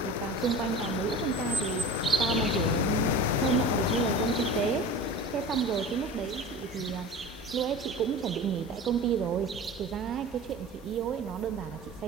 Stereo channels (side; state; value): both; normal; correlation 0.36